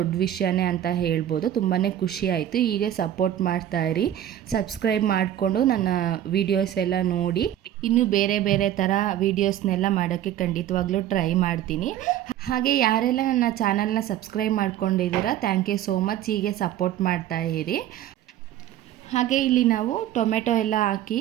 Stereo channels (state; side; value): quieter; left; 11.7 dB